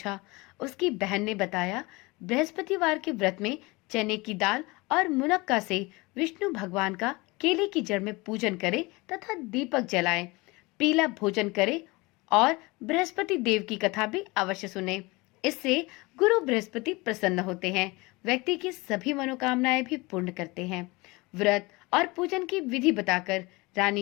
उसकी बहन ने बताया, बृहस्पतिवार के व्रत में चने की दाल और मुनक्का से विष्णु भगवान का केले की जड़ में पूजन करें तथा दीपक जलाएं, पीला भोजन करें और बृहस्पति देव की कथा भी अवश्य सुने। इससे गुरु बृहस्पति प्रसन्न होते हैं, व्यक्ति की सभी मनोकामनाएं भी पूर्ण करते हैं। व्रत और पूजन की विधि बताकर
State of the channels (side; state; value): right; quieter; 24.0 dB